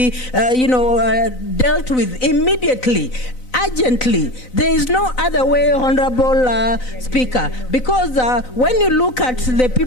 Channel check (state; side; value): late; right; 4.0 ms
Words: dealt with immediately. Urgently. There is no other way, Honorable Speaker, because when you look at the